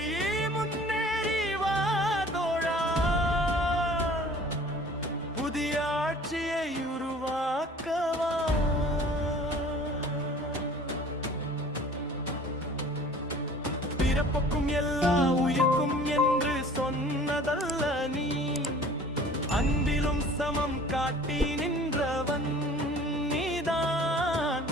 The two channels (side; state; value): both; normal; correlation 0.48